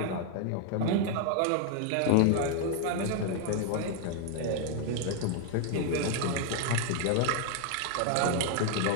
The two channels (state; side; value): different; both; correlation 0.00